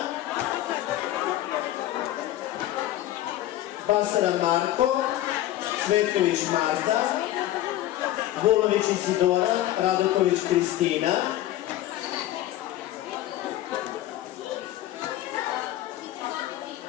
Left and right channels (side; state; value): right; quieter; 14.1 dB